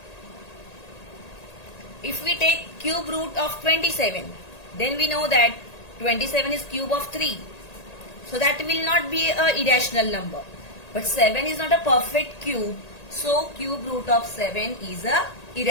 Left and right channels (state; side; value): late; right; 1.8 ms